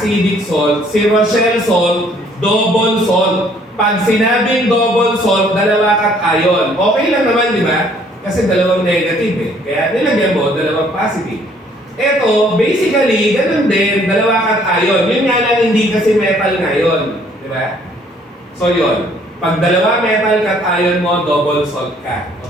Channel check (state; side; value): normal; both; correlation 0.61